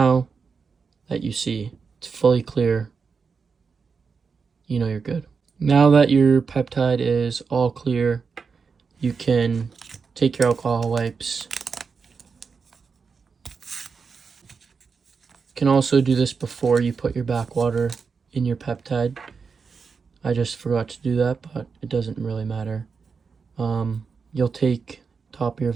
that you see it's fully clear, you know you're good. Now that your peptide is all clear, you can take your alcohol wipes. You can also do this before you put your backwater in your peptide. I just forgot to do that, but it doesn't really matter. You'll take top of your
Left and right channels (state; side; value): quieter; left; 5.3 dB